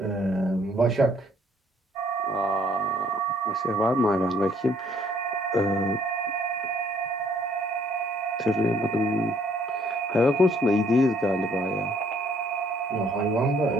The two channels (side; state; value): both; normal; correlation 0.64